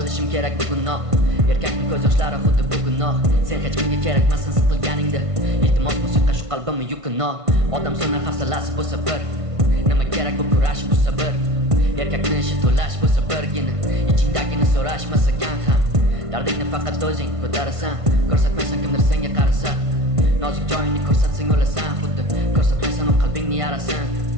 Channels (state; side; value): late; left; 1.5 ms